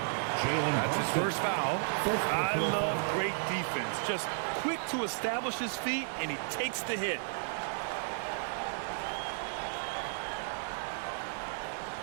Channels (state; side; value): silent; left; digital silence